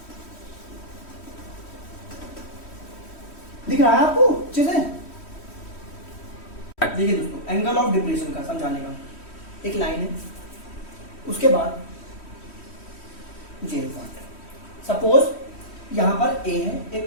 दिख रहा है आपको अच्छे से? देखिए दोस्तों, एंगल ऑफ डिप्रेशन का समझाने का एक लाइन है, उसके बाद जेल पार्ट। सपोज यहाँ पर ए है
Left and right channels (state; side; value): late; right; 3.1 ms